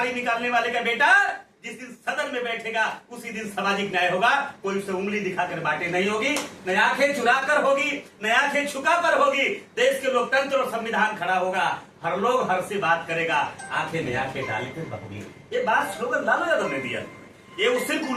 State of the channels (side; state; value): both; identical; correlation 1.00